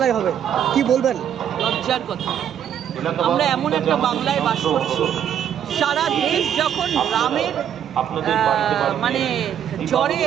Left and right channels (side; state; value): left; quieter; 9.4 dB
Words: হবে, কি বলবেন? লজ্জার কথা। আমরা এমন একটা বাংলায় বাস করছি, সারা দেশ যখন রামের মানে জ্বরে